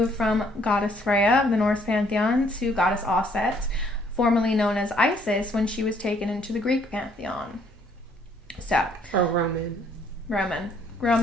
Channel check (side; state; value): both; normal; correlation 0.65